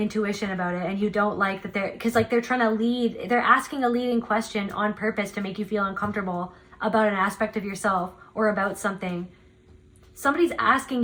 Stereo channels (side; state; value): both; identical; correlation 1.00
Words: about it, and you don't like that they're trying to lead, they're asking a leading question on purpose to make you feel uncomfortable about an aspect of yourself or about something. Somebody's asking